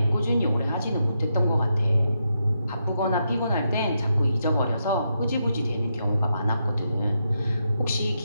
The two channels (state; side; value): inverted; both; correlation -0.82